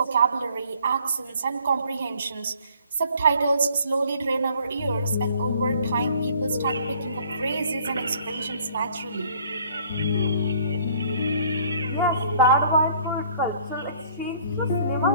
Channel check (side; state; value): both; inverted; correlation -0.58